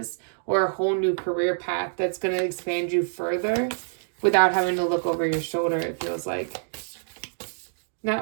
or a whole new career path that's going to expand you further without having to look over your shoulder, it feels like.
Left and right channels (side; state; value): left; silent; digital silence